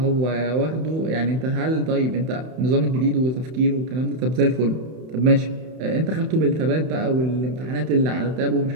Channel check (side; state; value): left; late; 31 ms